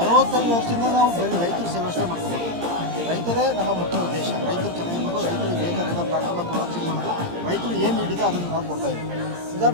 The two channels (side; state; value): left; late; 17 ms